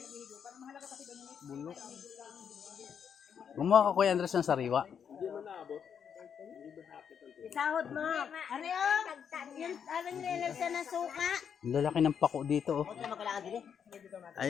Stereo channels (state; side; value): quieter; right; 7.6 dB